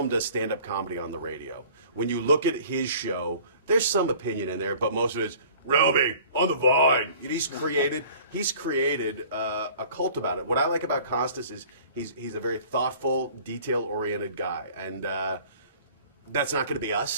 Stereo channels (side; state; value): both; inverted; correlation -0.48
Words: does stand-up comedy on the radio. When you look at his show, there's some opinion in there, but most of it is, Roby, on the Vine. He's created a cult about it. What I like about Costas is he's a very thoughtful, detail-oriented guy, and that's not going to be